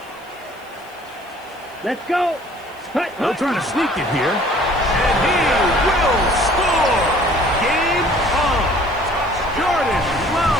Let's go. They'll try to sneak it here. And he will score. Game on. Jordan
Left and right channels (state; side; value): noise; left; hiss, 29 dB below the sound